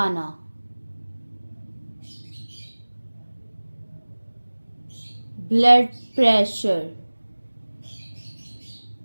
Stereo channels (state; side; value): inverted; both; correlation -1.00